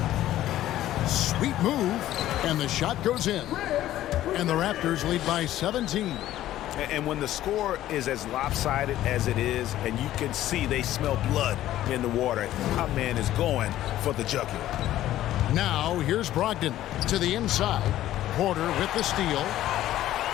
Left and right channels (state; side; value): quieter; right; 13.6 dB